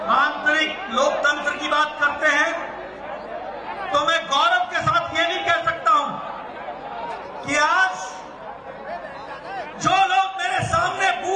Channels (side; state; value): both; identical; correlation 1.00